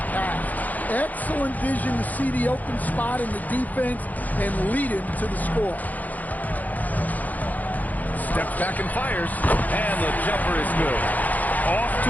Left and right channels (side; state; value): right; late; 0.080 ms